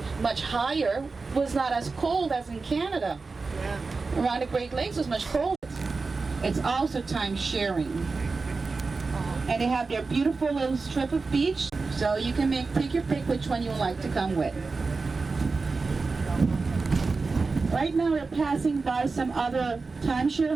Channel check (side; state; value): left; quieter; 4.1 dB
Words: much higher, was not as cold as in Canada. Yeah. Around the Great Lakes was much colder. It's also time sharing. And they have their beautiful little strip of beach, so you can take your pick which one you would like to come with. Right now we're passing by some other timeshare